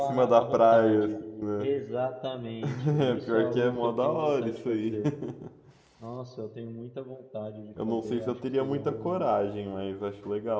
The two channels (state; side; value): identical; both; correlation 1.00